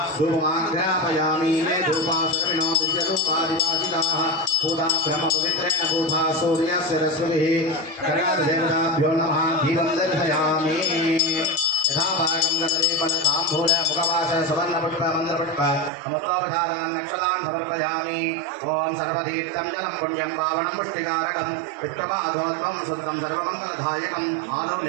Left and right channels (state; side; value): drops out; left; at 15.9 s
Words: धूपमाग्रापयामि मे धूपासर्विणो दिव्यरूपादिवासिताः पूजा ब्रह्मपवित्रेण पूजा सूर्यस्य रश्मिभिः कनकादेवताभ्यो नमः दीपं दर्शयामि यथा भागं गतलेपनताम्बूल मुखवास सुवर्णपुष्प मन्द्रपुष्प समुद्रोपधारान् नक्षलां समर्पयामि ओम सर्वतीर्थं जलं पुण्यं पावनं पुष्टिकारकं विष्णुपादोत्तमं सुत्रं सर्वमङ्गलदायकम्